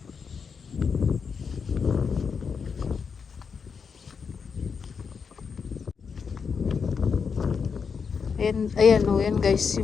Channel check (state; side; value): quieter; right; 5.9 dB